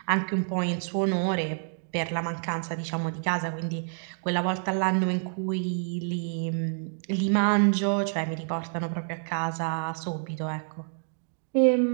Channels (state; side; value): silent; left; digital silence